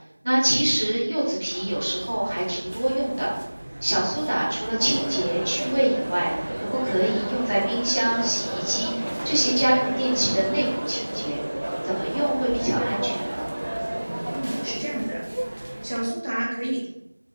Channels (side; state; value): both; inverted; correlation -1.00